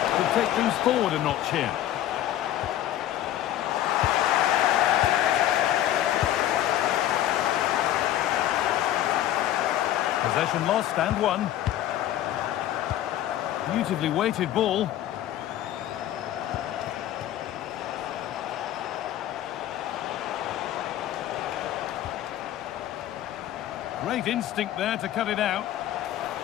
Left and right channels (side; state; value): right; quieter; 12.6 dB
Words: Could take things forward a notch here. Possession lost and won. Beautifully weighted ball. Great instinct there to cut it out.